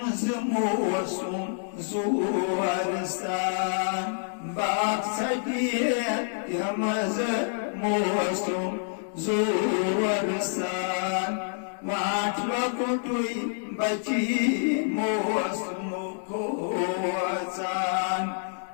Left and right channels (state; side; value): silent; right; digital silence